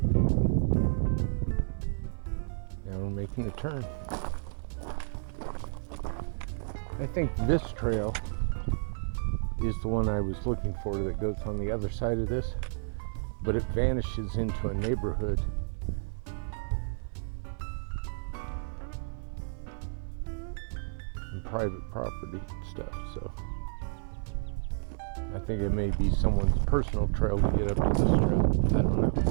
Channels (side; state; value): left; silent; 56 dB below the other